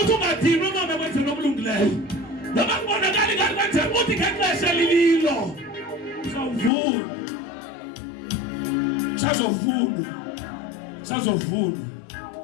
uthi ungadinwa noma kwenzela okulungileyo noma kubonakala ngathi kwenzela uthi ngexesha lililo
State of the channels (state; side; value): drops out; right; at 6.7 s